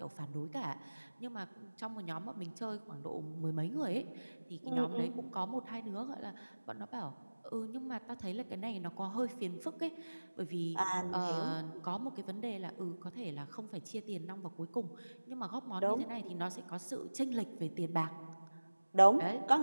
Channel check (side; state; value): both; inverted; correlation -1.00